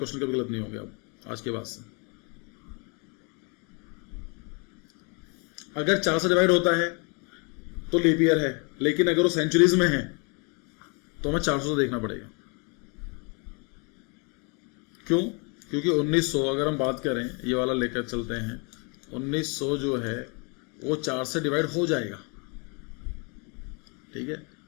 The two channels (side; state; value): right; quieter; 33.7 dB